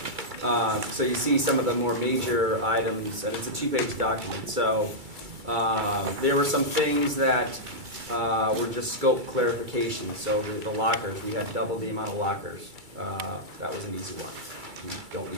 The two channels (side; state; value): left; late; 2.3 ms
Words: So you see some of the more major items, and it's a 2-page document. So there were some things that were just scope clarification. So the lockers, we had double the amount of lockers. That was an easy one. We don't